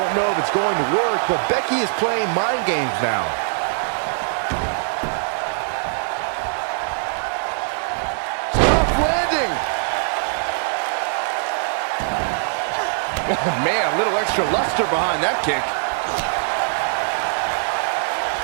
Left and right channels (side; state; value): left; silent; 64 dB below the other